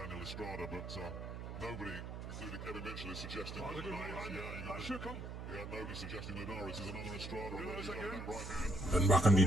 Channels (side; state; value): right; noise; hum, 8 dB below the sound